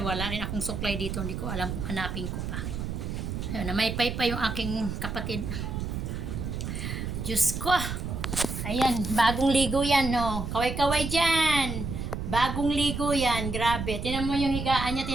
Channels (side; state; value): right; noise; rumble, 4 dB below the sound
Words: rin akong suklay dito. Hindi ko alam kung hanapin ko pa. Ayun, namaypay pa yung aking kapatid. Diyos ko. Ayan, bagong ligo yan, no. Kaway-kaway dyan. Bagong ligo yan. Grabe. Tinan mo yung higaan niya,